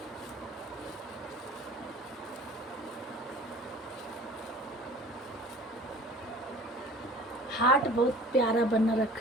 हार्ट बहुत प्यारा बना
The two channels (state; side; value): normal; both; correlation 0.46